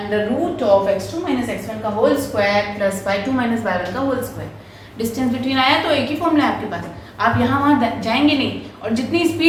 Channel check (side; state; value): both; identical; correlation 1.00